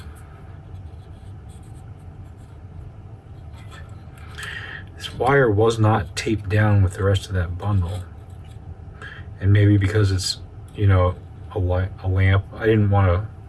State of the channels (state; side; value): identical; both; correlation 1.00